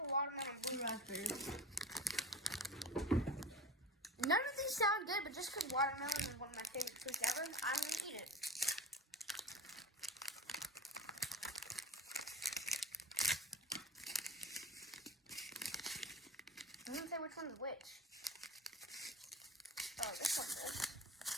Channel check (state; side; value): normal; both; correlation 0.37